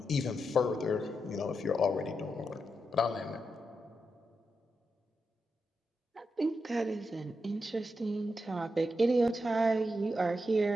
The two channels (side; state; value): both; normal; correlation 0.86